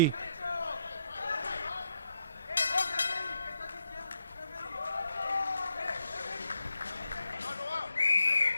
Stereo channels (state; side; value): inverted; both; correlation -0.79